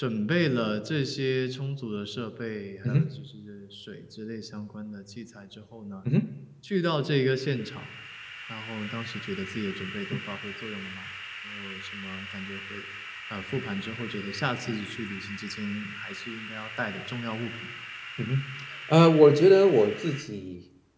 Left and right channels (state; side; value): identical; both; correlation 1.00